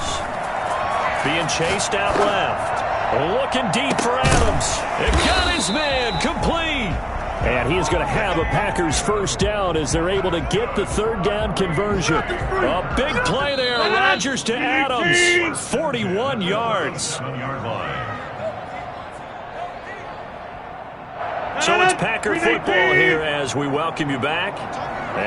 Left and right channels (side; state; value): both; identical; correlation 1.00